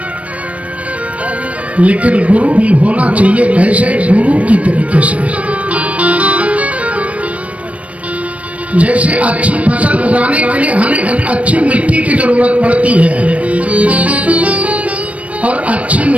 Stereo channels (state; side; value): late; left; 0.065 ms